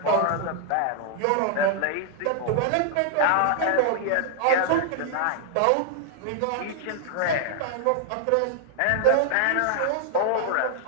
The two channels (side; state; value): both; different; correlation 0.00